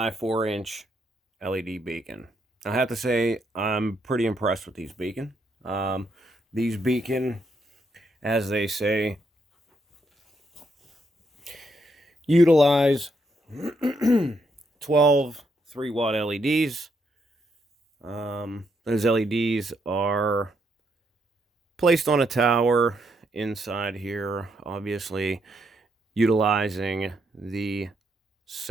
4-inch LED beacon. I have to say I'm pretty impressed with these beacon. These beacon, as they say, utilize 12 3-watt LEDs. Those LEDs are placed on a tower inside here, obviously utilizing the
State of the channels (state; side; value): normal; both; correlation 0.77